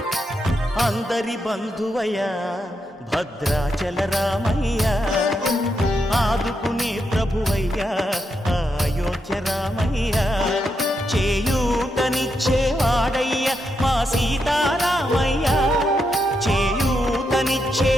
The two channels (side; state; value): both; normal; correlation 0.83